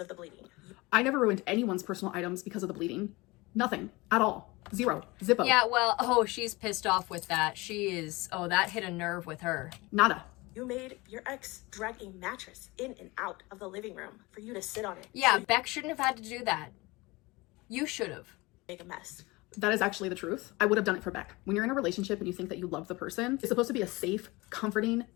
of the bleeding. I never ruined anyone's personal items because of the bleeding. Nothing. At all. Zero. Zippo. Yeah, well, oh, she's pissed off with that. She is, oh, that hit a nerve with her. Nada. You made your ex drag a mattress in and out of the living room for you to sit on it. Yeah, So Beck shouldn't have had to do that. You should have. make a mess. That is actually the truth. I would have done it for Beck. When you're in a relationship and you think that you love the person, it's supposed to be a safe, comforting,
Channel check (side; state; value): right; quieter; 22.9 dB